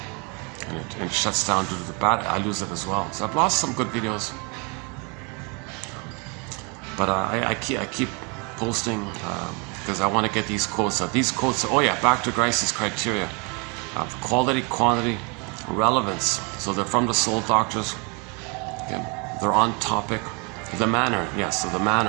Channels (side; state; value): left; quieter; 32.1 dB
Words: and it shuts down due to the battery, I lose it as well. So I've lost some good videos. But I keep posting because I want to get these quotes. These quotes, oh yeah, back to Grice's criteria. Quality, quantity, relevance. So they're from the soul doctors. Okay. They're on topic. The manner, yes, so the